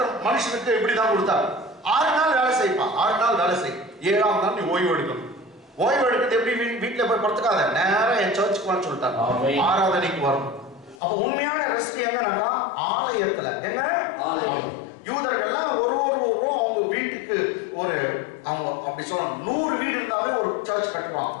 மனுஷனுக்கு இப்படி தான் கொடுத்தார். 6 நாள் வேலை செய்வான். 6 நாள் வேலை செய். 7ஆம் நாள் நீ ஓய்வு எடுக்கணும். ஓய்வு எடுக்கிறது எப்படி? வீட்டுல போய் படுத்துக்காத, நேரா என் சர்ச்சுக்கு வான்னு சொல்லிட்டாங்க. ஆராதனைக்கு வரணும். அப்ப உண்மையான ரெஸ்ட் எங்கனாக்கா ஆலயத்துல. எங்க? யூதர்கள்லாம் ஒரு அவங்க வீட்டுக்கு அவங்க அப்படி சொல்லணும் 100 வீடு இருந்தாவே ஒரு சர்ச் கட்டுவாங்க.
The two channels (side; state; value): right; drops out; at 11.0 s